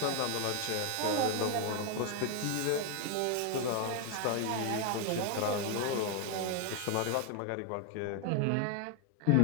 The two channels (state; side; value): different; both; correlation 0.01